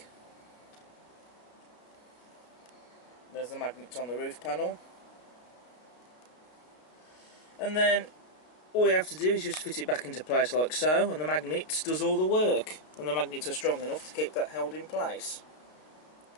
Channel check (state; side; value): late; right; 32 ms